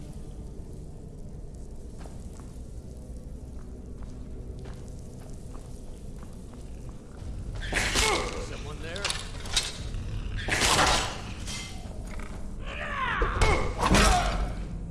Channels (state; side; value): identical; both; correlation 1.00